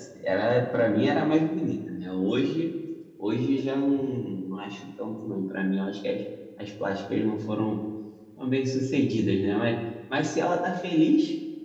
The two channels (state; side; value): identical; both; correlation 1.00